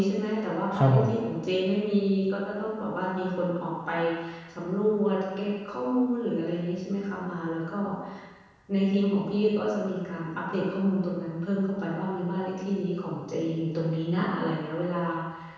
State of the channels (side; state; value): both; identical; correlation 1.00